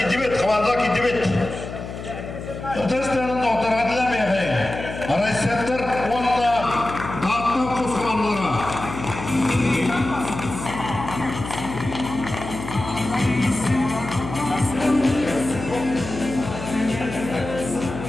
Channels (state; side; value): noise; left; hum, 9 dB below the sound